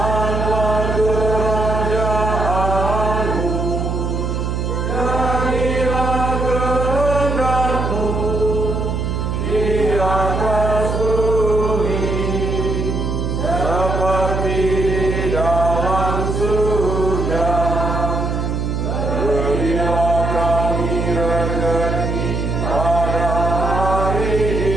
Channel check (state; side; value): noise; right; hum, 1 dB below the sound